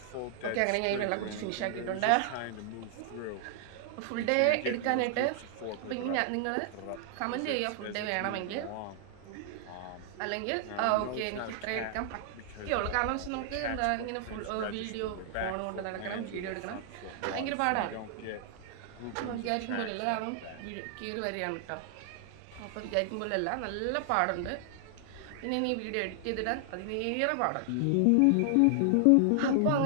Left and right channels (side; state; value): both; different; correlation 0.00